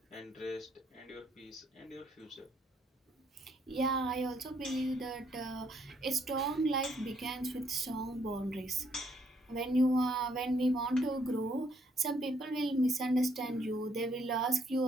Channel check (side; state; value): both; normal; correlation 0.70